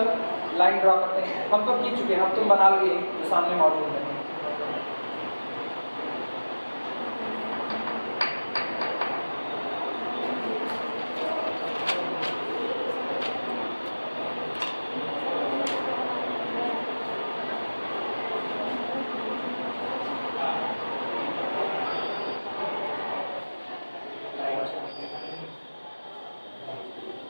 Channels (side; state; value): both; inverted; correlation -1.00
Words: Line draw करते हैं। हम तो खींच चुके हैं, अब तुम बना लोगे जो सामने मौजूद है।